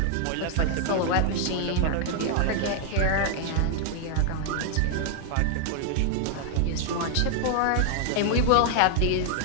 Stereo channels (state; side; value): different; both; correlation 0.00